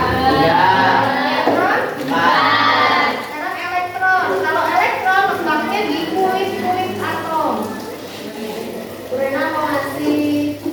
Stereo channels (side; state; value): both; identical; correlation 1.00